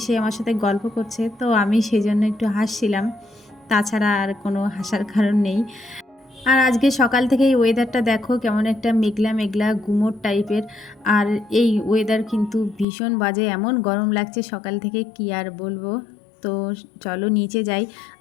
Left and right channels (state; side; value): drops out; right; at 12.9 s